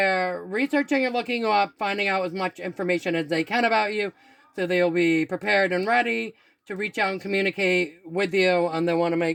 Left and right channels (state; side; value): identical; both; correlation 1.00